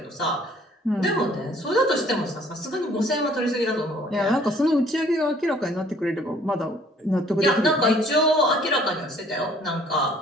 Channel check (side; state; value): both; normal; correlation 0.57